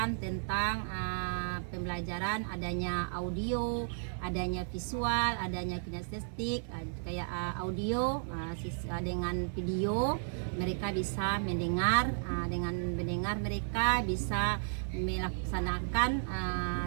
tentang pembelajaran adanya audio, adanya visual, adanya kinestetik, kayak audio dengan video mereka bisa mendengar, dengan mendengar mereka bisa melaksanakan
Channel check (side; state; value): left; silent; digital silence